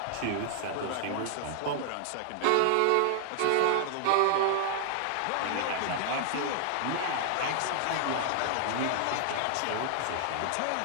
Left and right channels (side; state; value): both; different; correlation -0.01